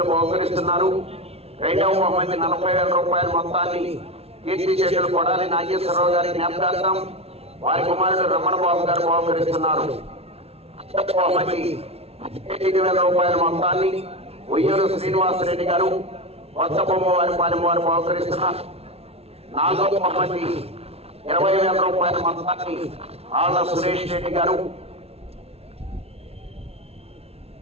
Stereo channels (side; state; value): left; late; 0.30 ms